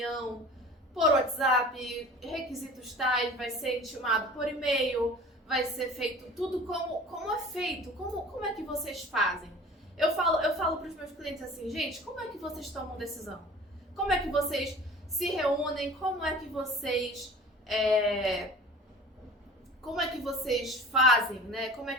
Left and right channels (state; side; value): normal; both; correlation 0.42